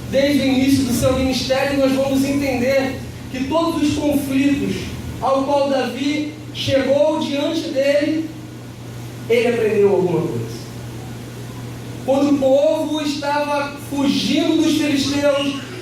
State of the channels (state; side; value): identical; both; correlation 1.00